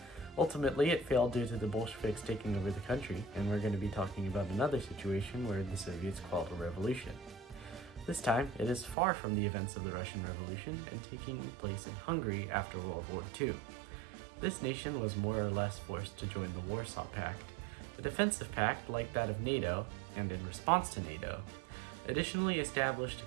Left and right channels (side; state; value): left; drops out; at 9.0 s